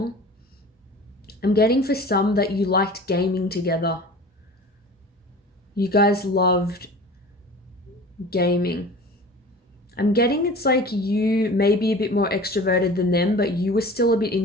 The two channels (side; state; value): both; normal; correlation 0.40